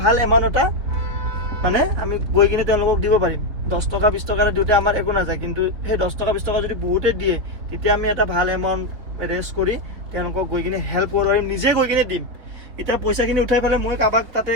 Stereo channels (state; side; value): late; left; 4.2 ms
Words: ভাল এমাউণ্ট এটা মানে আমি গৈ কিনে তেওঁলোকক দিব পাৰিম 10 টকা 20 টকা দিওঁতে আমাৰ একো নাযায় কিন্তু সেই 10 টকা 20 টকা যদি বহুতে দিয়ে তেতিয়া আমি এটা ভাল এমাউণ্ট ৰেজ কৰি তেওঁলোকক গৈ কিনে হেল্প কৰিব পাৰিম নিজে গৈ কিনে দিম এতিয়া পইচাখিনি উঠাই পেলাই মই কাৰোবাক তাতে